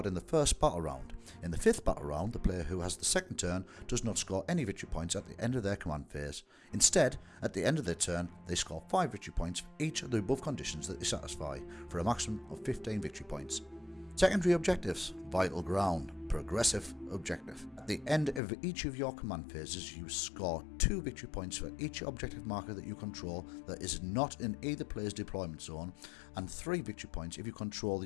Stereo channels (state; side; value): drops out; right; at 18.4 s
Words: in the first battle round. In the 5th battle round, the player who has the second turn does not score any victory points at the end of their command phase. Instead, at the end of their turn, they score 5 victory points for each of the above conditions that they satisfy, for a maximum of 15 victory points. Secondary objectives: Vital Ground, progressive objective. At the end of each of your command phases, you score 2 victory points for each objective marker that you control that is not in either player's deployment zone, and 3 victory points if you control